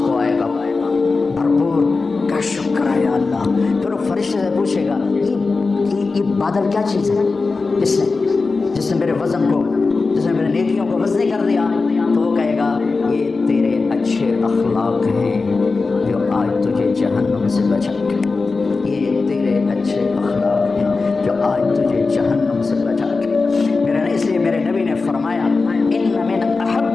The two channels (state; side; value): quieter; right; 4.1 dB